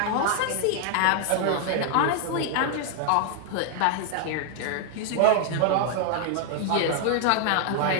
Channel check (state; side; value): different; both; correlation 0.00